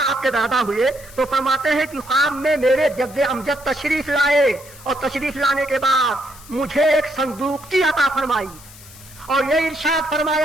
آپ کے دادا ہوئے، تو فرماتے ہیں کہ خواب میں میرے جد امجد تشریف لائے، اور تشریف لانے کے بعد مجھے ایک صندوق کی عطا فرمائی، اور یہ ارشاد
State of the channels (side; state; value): left; noise; hiss, 20 dB below the sound